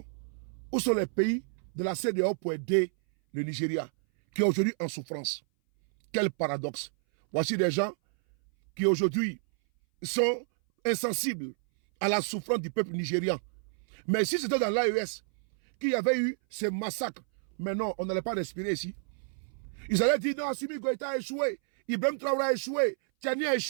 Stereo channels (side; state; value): left; silent; 58 dB below the other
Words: où sont les pays de la CEDEAO pour aider le Nigeria, qui est aujourd'hui en souffrance? Quel paradoxe. Voici des gens qui aujourd'hui sont insensibles à la souffrance du peuple nigérian. Mais si c'était dans l'AES qu'il y avait eu ces massacres, mais non, on n'allait pas respirer ici. Ils allaient dire non, Assimi Goïta a échoué, Ibrahim Traoré a échoué, Tiani a